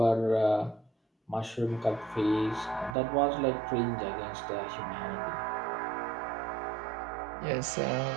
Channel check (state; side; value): drops out; left; at 3.0 s